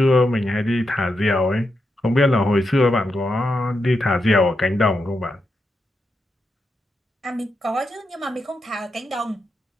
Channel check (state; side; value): normal; both; correlation 0.85